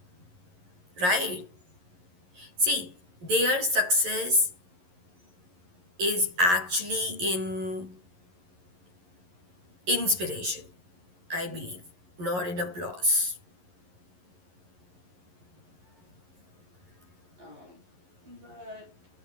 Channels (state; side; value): late; left; 11 ms